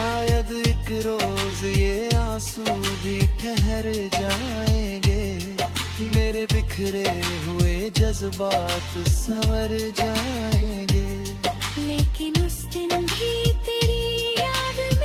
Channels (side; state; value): both; identical; correlation 1.00